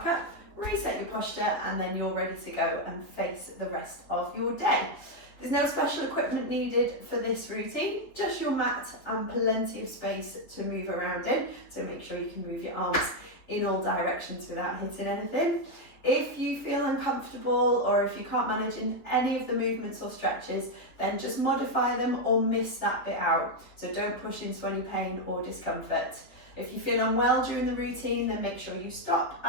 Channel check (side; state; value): right; late; 3.5 ms